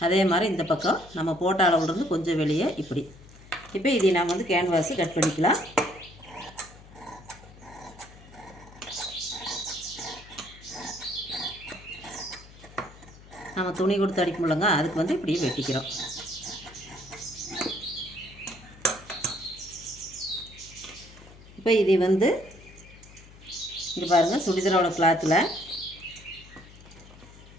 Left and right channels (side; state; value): left; noise; hum, 21 dB below the sound